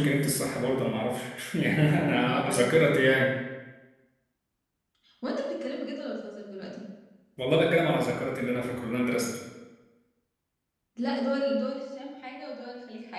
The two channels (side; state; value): both; identical; correlation 1.00